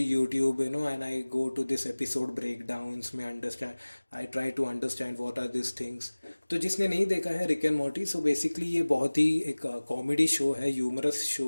and I go to this episode breakdowns में understand, I try to understand what are this things. तो जिसने नहीं देखा है Rick and Morty, so basically ये बहुत ही एक कॉमेडी शो है, ह्यूमरस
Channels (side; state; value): both; inverted; correlation -1.00